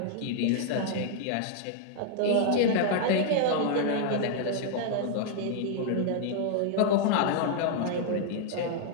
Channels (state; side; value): different; both; correlation 0.00